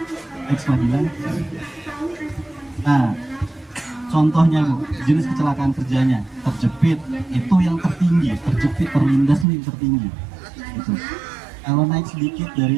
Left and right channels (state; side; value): drops out; left; at 9.5 s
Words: Ekstra bilang, nah contohnya Bu, jenis kecelakaan kerjanya terjepit itu yang tertinggi, terjepit terlindas itu yang tertinggi. Gitu. Kalau naik sedikit dari